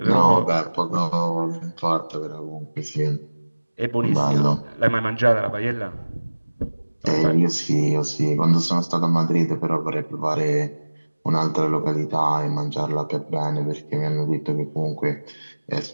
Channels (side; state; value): both; inverted; correlation -1.00